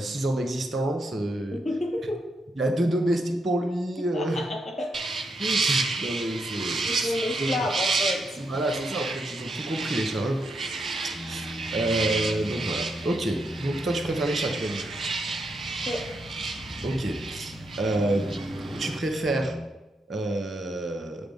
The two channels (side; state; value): both; normal; correlation 0.81